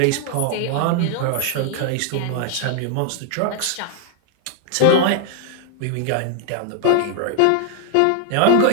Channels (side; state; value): both; different; correlation 0.00